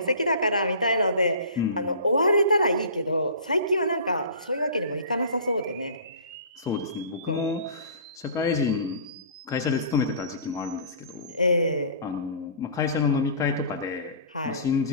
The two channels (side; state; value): both; inverted; correlation -0.41